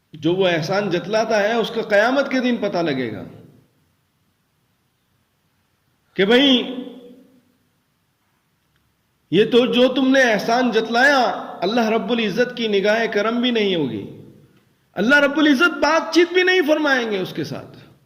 جو وہ احسان جتلاتا ہے اس کا قیامت کے دن پتہ لگے گا کہ بھئی یہ تو جو تم نے احسان جتلایا، اللہ رب العزت کی نگاہ کرم بھی نہیں ہوگی، اللہ رب العزت بات چیت بھی نہیں فرمائیں گے اس کے ساتھ،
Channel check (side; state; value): both; identical; correlation 1.00